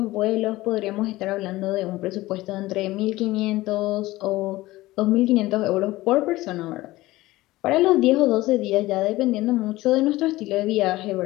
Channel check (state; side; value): quieter; right; 18.2 dB